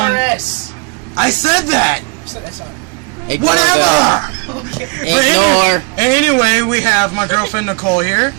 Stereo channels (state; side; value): quieter; left; 32.5 dB